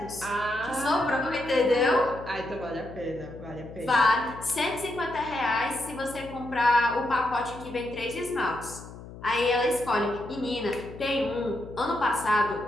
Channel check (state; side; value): noise; left; hum, 15 dB below the sound